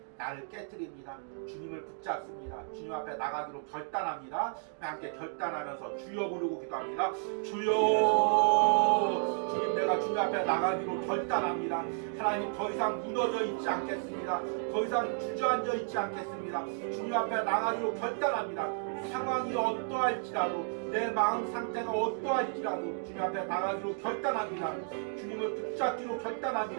나를 깨트립니다. 주님을 붙잡습니다. 주님 앞에 나가기로 결단합니다. 함께 결단하면서 주여 부르고 기도합니다. 주여 주님 내가 주님 앞에 나가기로 결단합니다. 하나님 더 이상 무너져 있지 않겠습니다. 더 이상 주저앉아 있지 않겠습니다. 주님 앞에 나가기로 결단합니다. 상황이 어떠할지라도 내 마음 상태가 어떠할지라도 주님 앞에 나가기로 결단합니다. 주님을 붙잡기로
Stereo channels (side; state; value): left; silent; 56 dB below the other